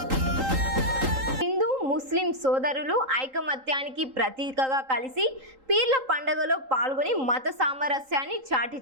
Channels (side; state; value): left; late; 3.8 ms